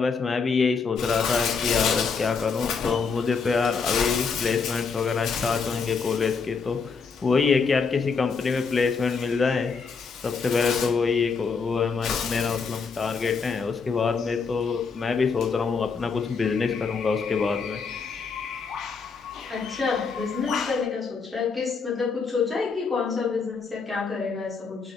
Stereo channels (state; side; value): quieter; right; 5.2 dB